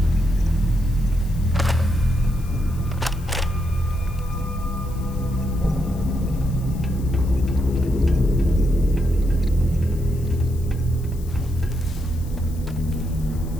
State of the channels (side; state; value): left; noise; hiss, 22 dB below the sound